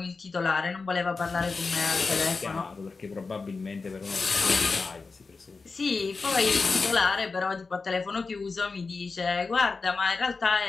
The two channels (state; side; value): quieter; right; 4.3 dB